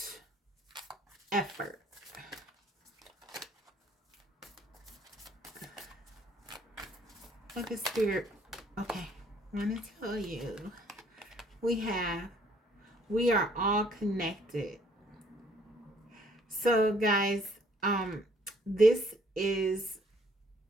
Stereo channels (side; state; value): both; normal; correlation 0.62